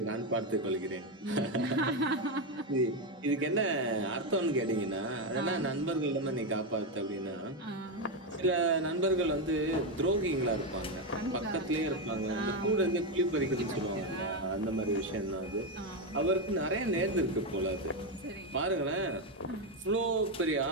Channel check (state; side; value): normal; both; correlation 0.08